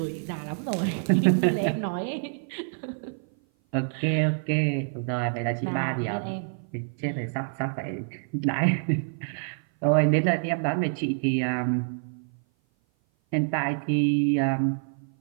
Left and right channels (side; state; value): left; silent; 56 dB below the other